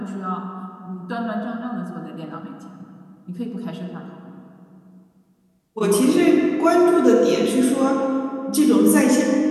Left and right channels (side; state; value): both; identical; correlation 1.00